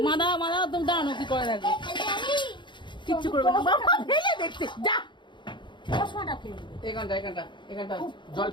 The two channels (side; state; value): right; late; 0.23 ms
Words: মাদা মাদা তুমি দাঁড়ানো, কি করে দেখো, কিচ্ছু করবে না। বাবা ফেলে দেখছে, যা এখানটা এখানটা এখানটা জল,